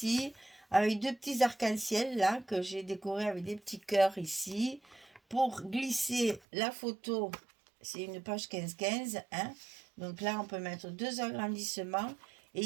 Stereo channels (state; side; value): drops out; left; at 6.4 s